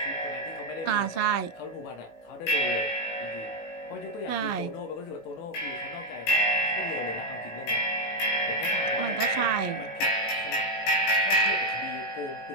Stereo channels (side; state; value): right; late; 18 ms